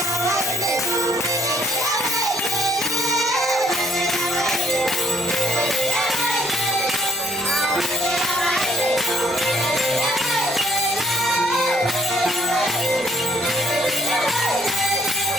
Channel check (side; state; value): both; normal; correlation 0.64